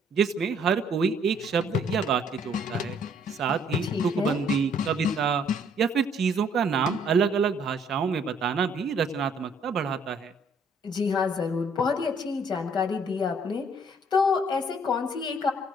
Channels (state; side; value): normal; both; correlation 0.63